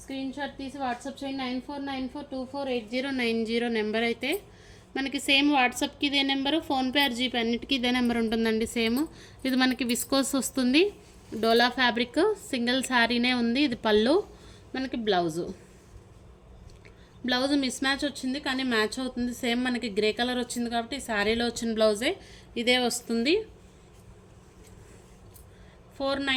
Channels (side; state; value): both; identical; correlation 1.00